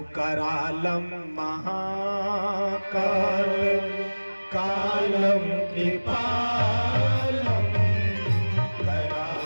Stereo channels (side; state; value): both; inverted; correlation -1.00